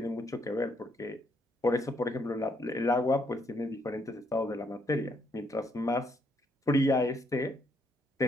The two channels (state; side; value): normal; both; correlation 0.73